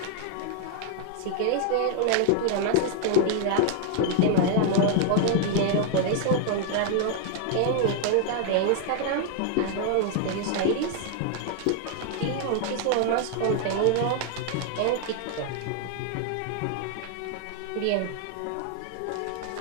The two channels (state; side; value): different; both; correlation 0.00